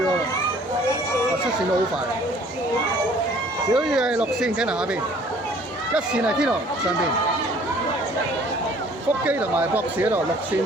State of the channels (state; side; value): normal; both; correlation 0.55